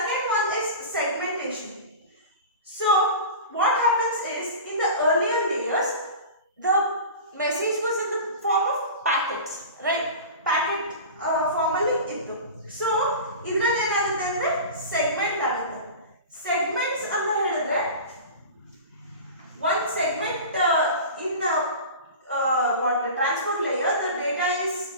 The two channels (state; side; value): inverted; both; correlation -0.33